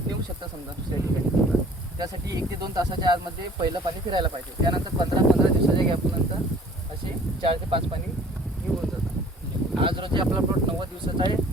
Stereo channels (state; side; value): normal; both; correlation 0.52